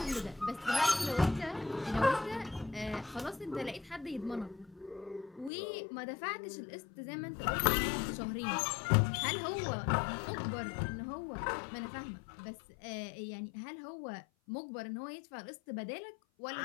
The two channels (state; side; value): drops out; right; at 5.5 s